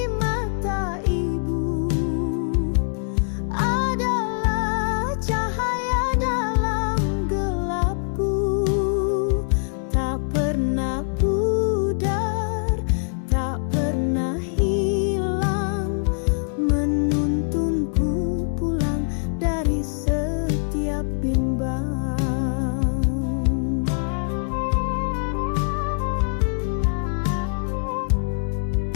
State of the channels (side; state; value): right; silent; digital silence